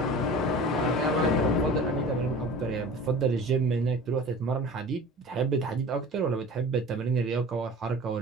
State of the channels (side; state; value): both; normal; correlation 0.40